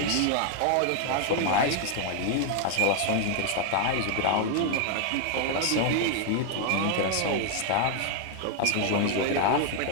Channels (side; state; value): both; different; correlation 0.00